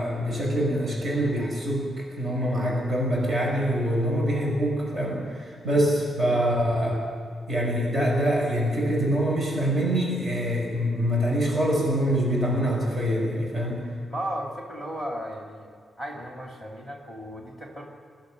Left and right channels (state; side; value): normal; both; correlation 0.72